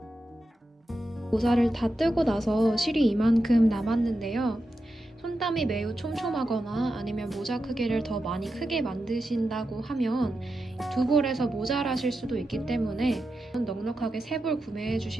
모자를 다 뜨고 나서 실이 이만큼 남았는데요. 손땀이 매우 촘촘하거나 아니면 모자 크기를 더 많이 크게 만드신다고 하면 두 볼에서 모자라실 수도 있기 때문에 넉넉하게 세 볼 구매해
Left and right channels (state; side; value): normal; both; correlation 0.89